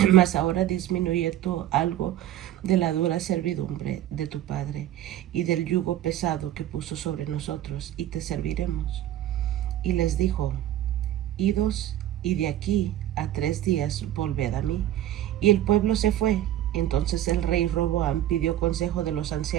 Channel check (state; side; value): quieter; left; 12.6 dB